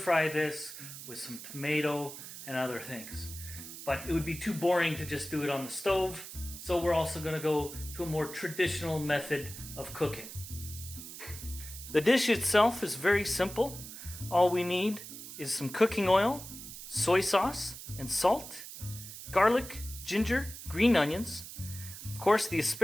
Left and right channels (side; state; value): right; noise; hiss, 12 dB below the sound